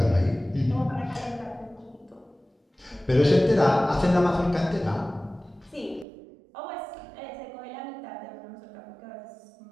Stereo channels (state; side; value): drops out; left; at 6.1 s